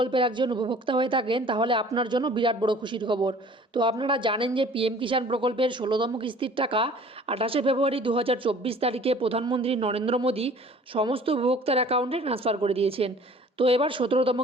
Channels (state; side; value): normal; both; correlation 0.49